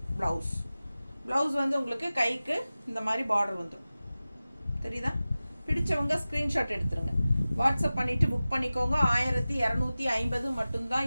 ப்ளவுஸ் வந்து உங்களுக்கு கைக்கு இந்த மாதிரி பார்டர் வந்துடும். தெரியுதா? பிடிச்சவங்க ஸ்க்ரீன்ஷாட் எடுத்துருங்க, வாட்ஸ்அப் பண்ணிவிட்டு புக் பண்ணிக்கோங்க. 1250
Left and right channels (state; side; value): inverted; both; correlation -0.96